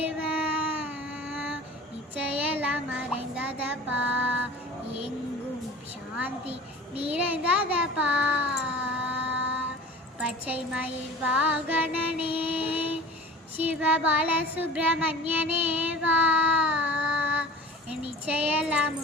நிச்சயெல்லாம் மறைந்ததப்பா, எங்கும் சாந்தி நிறைந்ததப்பா. பச்சை மயில் வாகனனே சிவ பாலசுப்ரமணியனே வா, நிச்சயெல்லாம்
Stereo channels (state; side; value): normal; both; correlation 0.40